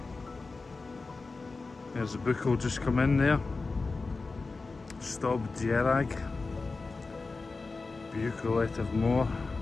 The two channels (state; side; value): quieter; right; 3.9 dB